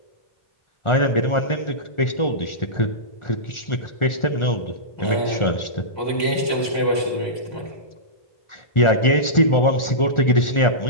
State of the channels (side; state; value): right; late; 1.4 ms